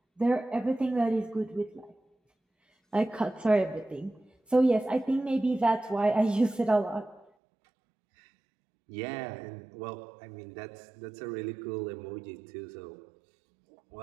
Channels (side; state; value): left; drops out; at 7.3 s